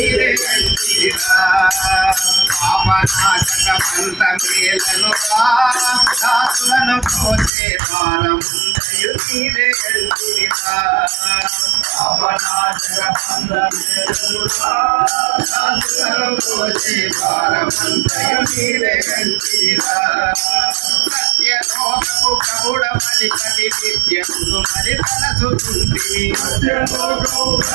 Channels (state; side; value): drops out; left; at 7.5 s